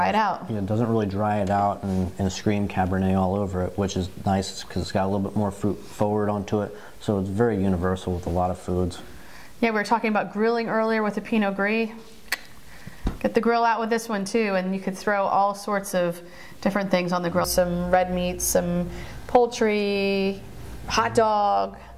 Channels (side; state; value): both; identical; correlation 1.00